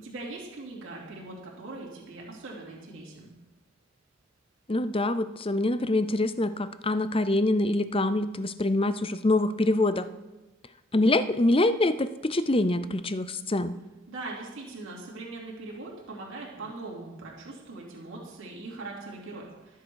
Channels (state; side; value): normal; both; correlation 0.68